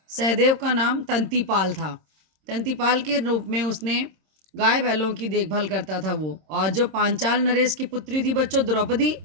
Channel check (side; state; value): left; late; 26 ms